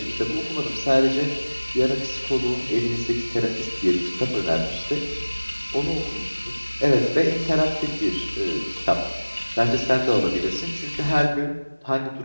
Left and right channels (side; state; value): both; inverted; correlation -1.00